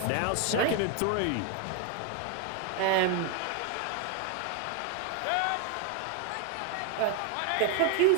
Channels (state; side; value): different; both; correlation 0.01